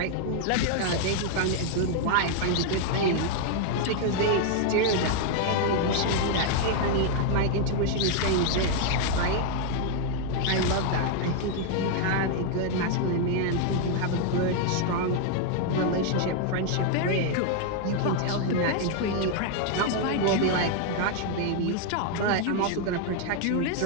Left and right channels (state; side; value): different; both; correlation 0.00